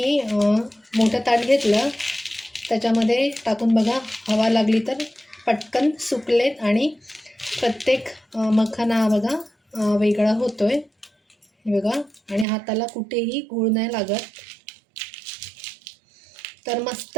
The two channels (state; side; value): drops out; left; at 12.5 s